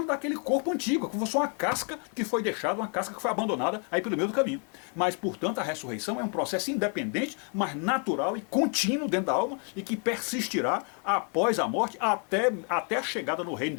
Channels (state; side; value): quieter; right; 39.5 dB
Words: daquele corpo antigo, como se fosse uma casca que foi deixada, uma casca que foi abandonada aí pelo meio do caminho. Mas, portanto, a ressurreição é um processo independente, mas natural e contínuo dentro da alma e que persistirá após a morte até a chegada no reino